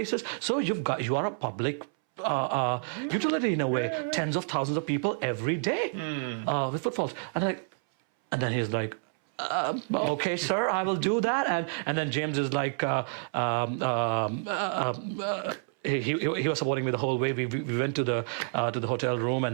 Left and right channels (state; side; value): silent; left; 59 dB below the other